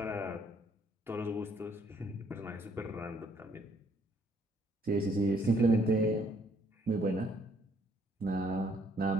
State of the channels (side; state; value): both; normal; correlation 0.66